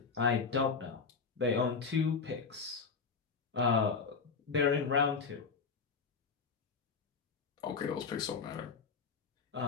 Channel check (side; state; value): right; quieter; 5.2 dB